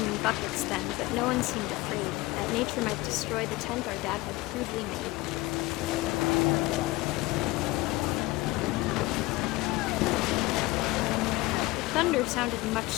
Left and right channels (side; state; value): right; quieter; 20.6 dB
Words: in buckets then, but no one seemed afraid that nature might destroy the tent our dad had crudely made. The thunder sounded